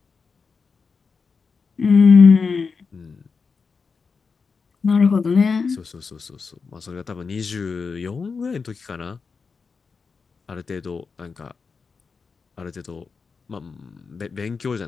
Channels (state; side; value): quieter; right; 5.1 dB